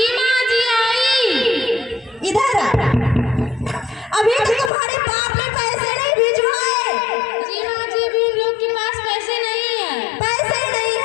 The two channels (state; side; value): drops out; right; at 4.7 s